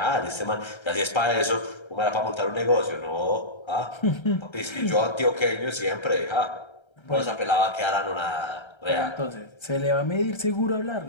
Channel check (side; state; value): right; late; 1.3 ms